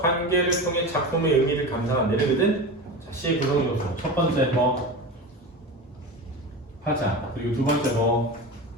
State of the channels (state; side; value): normal; both; correlation 0.27